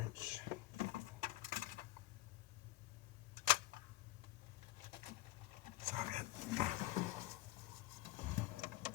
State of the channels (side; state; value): right; quieter; 16.6 dB